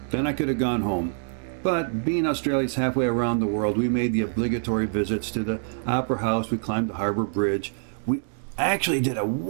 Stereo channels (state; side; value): silent; left; digital silence